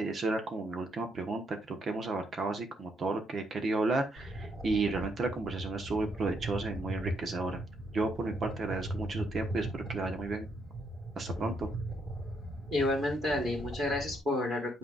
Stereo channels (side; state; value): both; normal; correlation 0.75